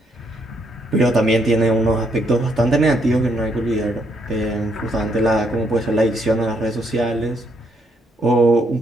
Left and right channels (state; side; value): normal; both; correlation 0.73